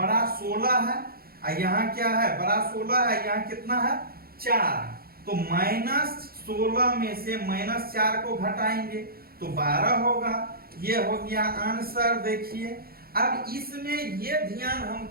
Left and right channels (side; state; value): left; late; 0.44 ms